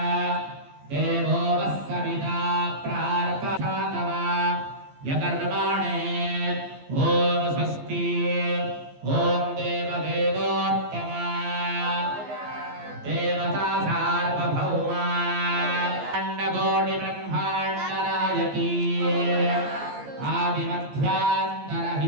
దేవో వస్సవితా ప్రార్పణాతవ యకర్మాణే ఓం స్వస్తి ఓం దేవదేవోత్తమ దేవతా సార్వభౌమ అండకోటి బ్రహ్మాండ నాయకీ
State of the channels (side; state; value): left; late; 15 ms